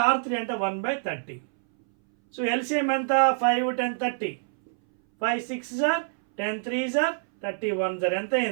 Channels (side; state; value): left; silent; 60 dB below the other